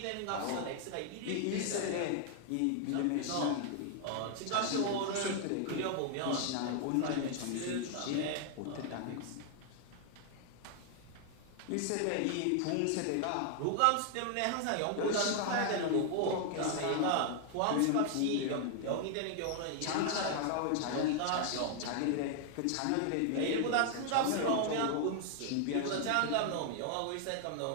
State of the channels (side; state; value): both; different; correlation 0.00